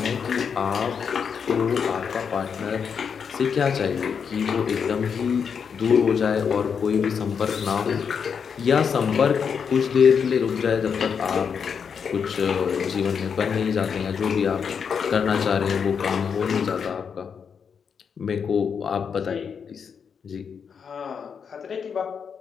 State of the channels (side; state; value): right; quieter; 6.6 dB